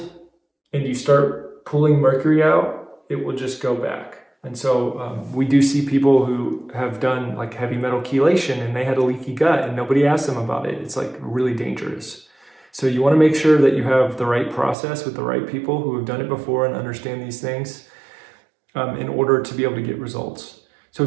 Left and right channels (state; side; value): drops out; left; at 14.8 s